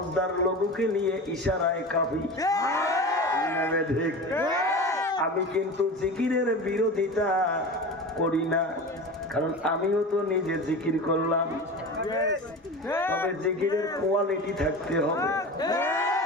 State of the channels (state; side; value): normal; both; correlation 0.30